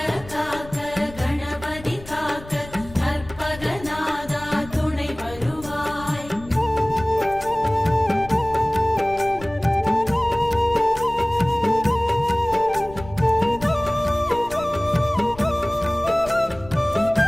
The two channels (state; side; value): noise; left; rumble, 17 dB below the sound